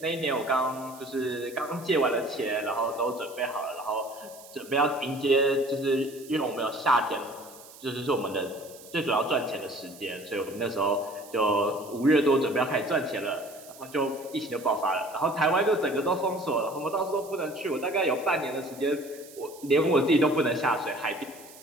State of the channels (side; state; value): right; noise; hiss, 20 dB below the sound